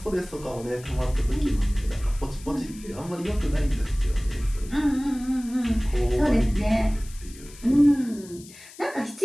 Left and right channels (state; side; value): noise; left; hiss, 20 dB below the sound